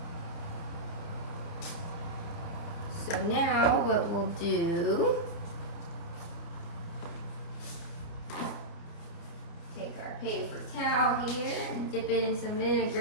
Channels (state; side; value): late; right; 29 ms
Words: So now what we'll do, take our paper towel here and dip it in some